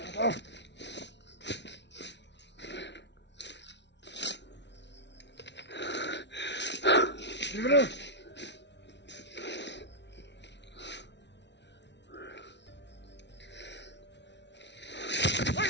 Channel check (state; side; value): late; right; 0.51 ms